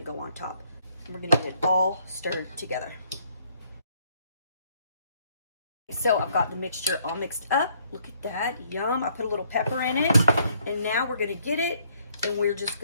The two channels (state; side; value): inverted; both; correlation -0.67